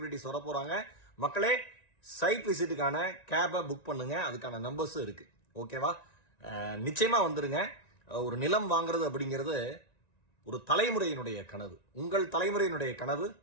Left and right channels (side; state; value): right; late; 1.9 ms